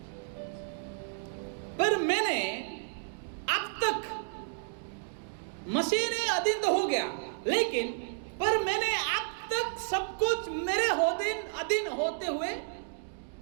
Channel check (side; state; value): left; silent; digital silence